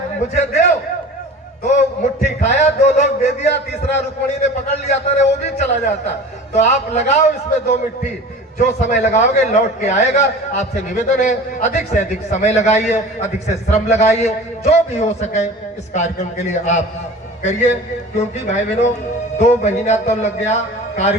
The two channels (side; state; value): both; normal; correlation 0.39